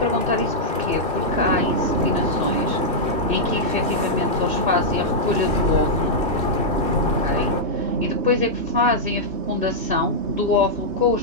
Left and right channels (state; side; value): late; left; 3.0 ms